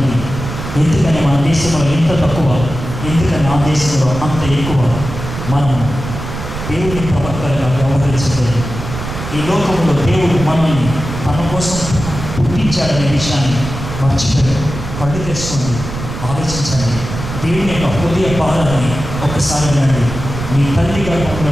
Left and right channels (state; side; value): noise; right; rumble, 8 dB below the sound